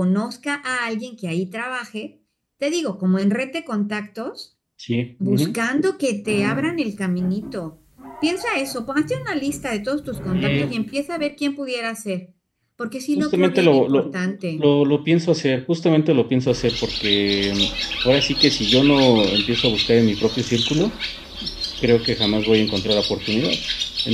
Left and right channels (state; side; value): identical; both; correlation 1.00